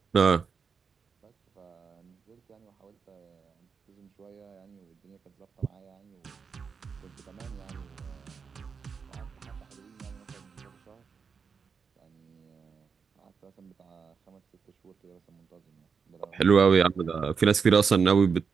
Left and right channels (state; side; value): quieter; left; 5.8 dB